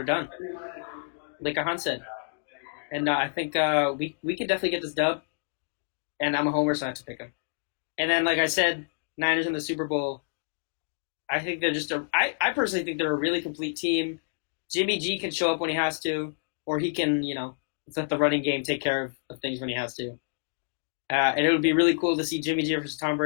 done, like Ahaan said. And I think we can definitely get this dub, and I'm a homer, so I have to pick them. And then, like I said, Niners in the Super Bowl. I think they're I personally think they're a really complete team. Jimmy G can show up when he has to, or he can, let the running game take care of things when he has to. And it would be really cool to see Jimmy G versus Tom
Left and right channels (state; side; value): silent; right; digital silence